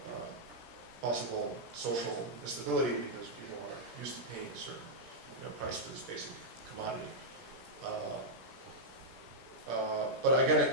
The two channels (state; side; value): late; left; 17 ms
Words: possible social instability because people are used to paying a certain price for this basic commodity. But again,